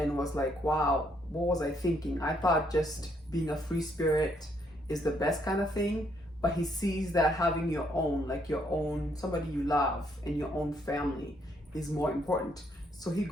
was like, wow, what was I thinking? I thought just being a free spirit is the best kind of thing, but he sees that having your own, like your own, somebody you love and your own family is more important. So he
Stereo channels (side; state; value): both; normal; correlation 0.71